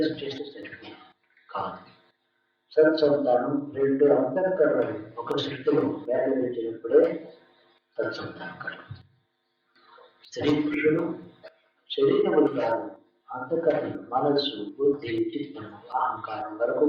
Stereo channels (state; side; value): identical; both; correlation 1.00